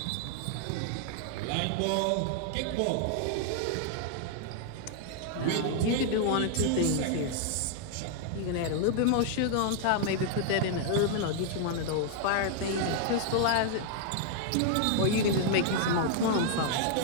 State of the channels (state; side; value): different; both; correlation -0.01